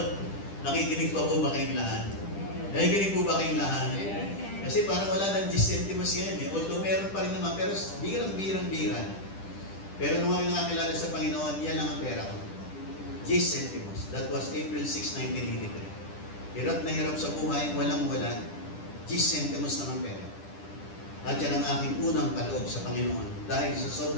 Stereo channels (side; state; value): right; late; 10 ms